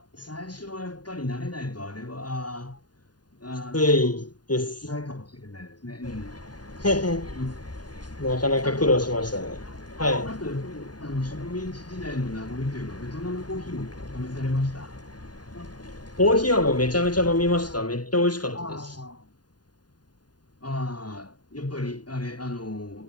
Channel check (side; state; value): right; late; 0.70 ms